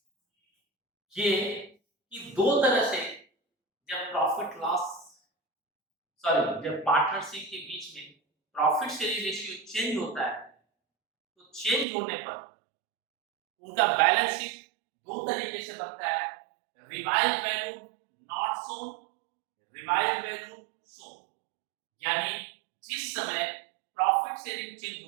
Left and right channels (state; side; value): drops out; left; at 11.9 s